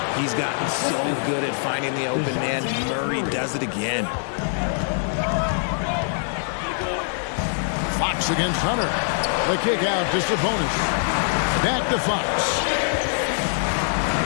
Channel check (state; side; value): silent; right; 63 dB below the other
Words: He's gotten so good at finding the open man. Murray does it again. Fox against Hunter. The kick out to Sabonis. Back to Fox.